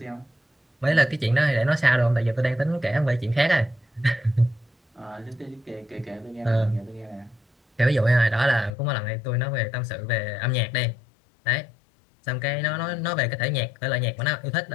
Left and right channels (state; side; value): drops out; right; at 8.7 s